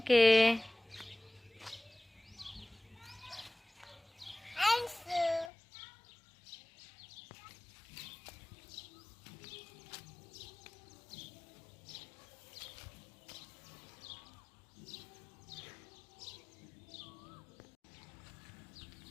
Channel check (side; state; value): right; drops out; at 5.5 s